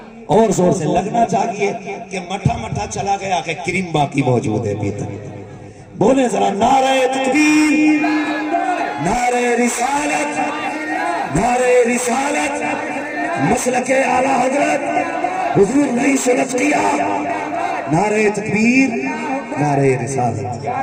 اور زور سے لگنا چاہیے کہ مٹھا مٹھا چلا گیا کہ کریم باقی موجود ہے. بولے ذرا نعرہ تکبیر، نعرہ رسالت، نعرہ رسالت، مسلک اعلیٰ حضرت حضور نہیں سنت کیا. نعرہ تکبیر، نعرہ رسالت. یا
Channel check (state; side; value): identical; both; correlation 1.00